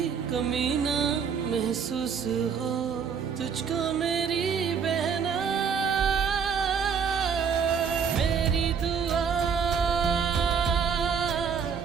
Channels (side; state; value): left; quieter; 6.6 dB